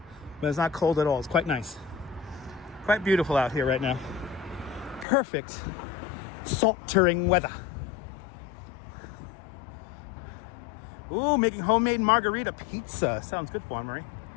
but it's not cold at all. It's quite nice. Quite beautiful out here right now. Perfect sweltering weather. Ooh, making homemade margarita pizza. Sounds good for Marie.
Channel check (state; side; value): drops out; right; at 5.1 s